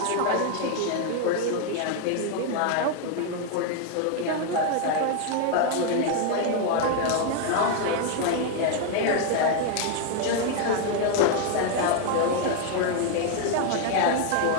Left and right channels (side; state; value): both; different; correlation 0.00